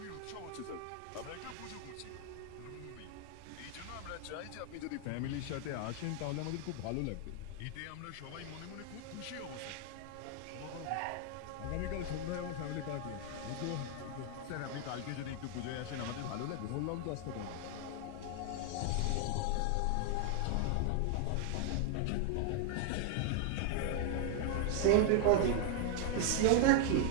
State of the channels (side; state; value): both; different; correlation 0.00